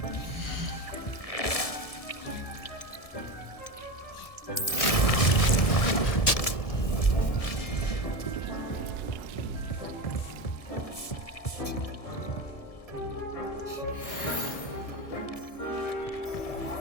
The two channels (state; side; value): late; right; 1.7 ms